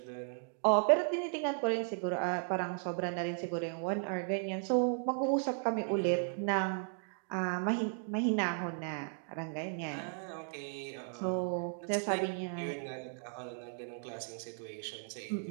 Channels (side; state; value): left; silent; 54 dB below the other